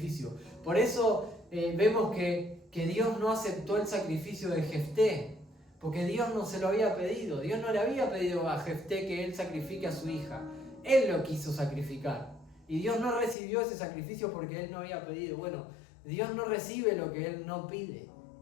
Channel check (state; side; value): drops out; right; at 13.4 s